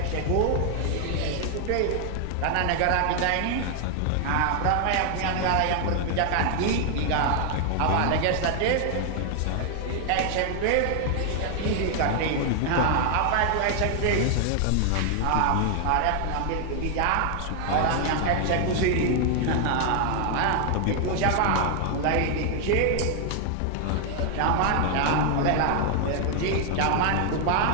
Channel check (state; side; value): different; both; correlation 0.00